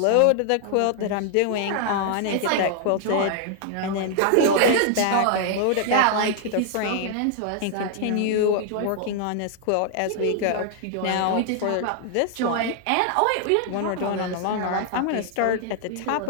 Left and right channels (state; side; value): different; both; correlation 0.00